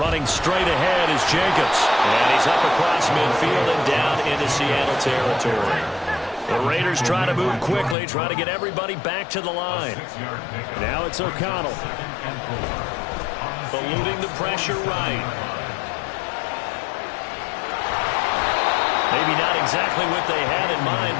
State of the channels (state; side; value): drops out; right; at 8.0 s